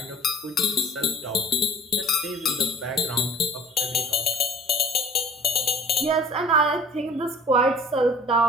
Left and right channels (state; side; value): normal; both; correlation 0.49